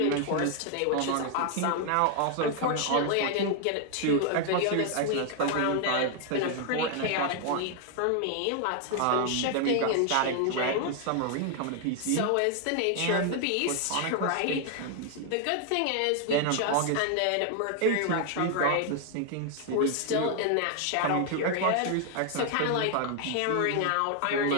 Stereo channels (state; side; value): different; both; correlation 0.00